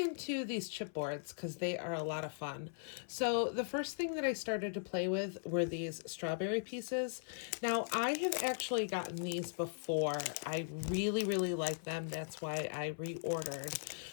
these chipboards because they are a lot of fun. So the first thing that I started to play with were these strawberry pieces. Now I have actually gotten these before. I really, really like them. That's why I reordered.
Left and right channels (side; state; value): right; silent; 52 dB below the other